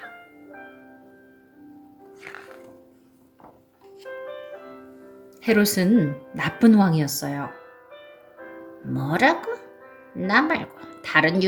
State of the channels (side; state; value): both; identical; correlation 1.00